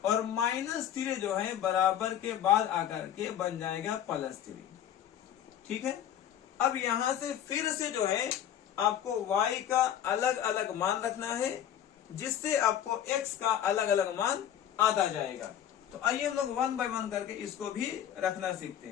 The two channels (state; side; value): quieter; right; 10.4 dB